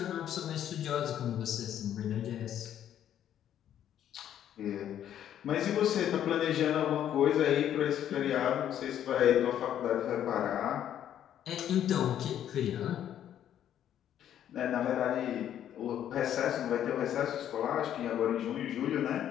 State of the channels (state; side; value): quieter; right; 10.5 dB